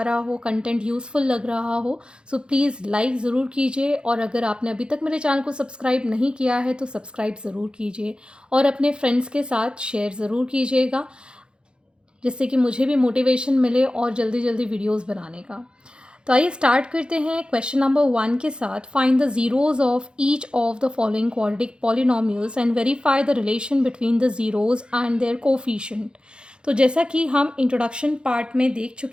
रहा हो, कंटेंट यूज़फुल लग रहा हो, सो प्लीज़ लाइक ज़रूर कीजिए। और अगर आपने अभी तक मेरे चैनल को सब्सक्राइब नहीं किया है तो सब्सक्राइब ज़रूर कीजिए और अपने फ्रेंड्स के साथ शेयर ज़रूर कीजिएगा, जिससे कि मुझे भी मोटिवेशन मिले और जल्दी जल्दी वीडियोस बनाने का। तो आइए स्टार्ट करते हैं क्वेश्चन नंबर 1 के साथ। Find the zeros of each of the following quadratic polynomials and verify the relation between the zeros and their coefficient. तो जैसा कि हम इंट्रोडक्शन पार्ट में देख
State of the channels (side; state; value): left; late; 0.052 ms